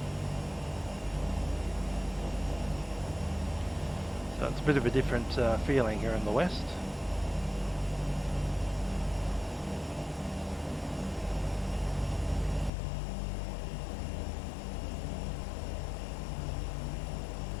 So it's a bit of a different feeling here in the west.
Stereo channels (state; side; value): drops out; right; at 12.7 s